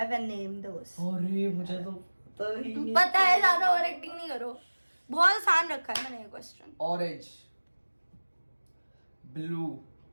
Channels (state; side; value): inverted; both; correlation -1.00